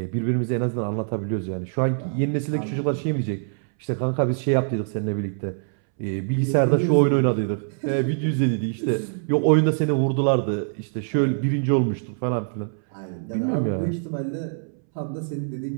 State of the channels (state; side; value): silent; left; 62 dB below the other